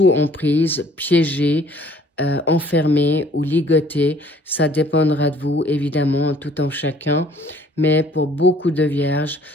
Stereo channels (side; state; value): both; normal; correlation 0.57